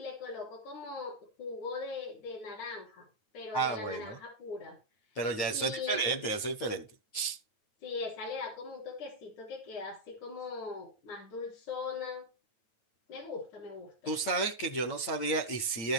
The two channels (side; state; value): right; late; 9.2 ms